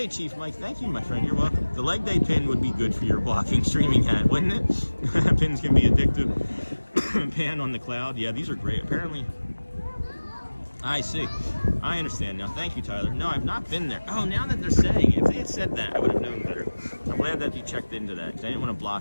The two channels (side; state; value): both; inverted; correlation -1.00